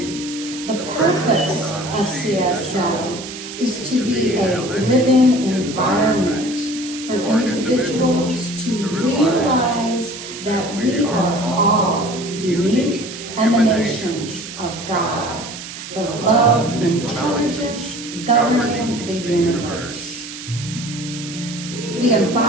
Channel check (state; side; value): noise; right; hiss, 11 dB below the sound